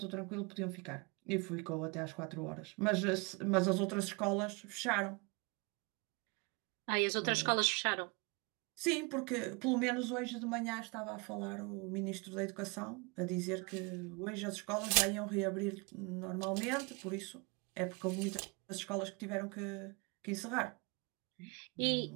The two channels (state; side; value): quieter; left; 30.6 dB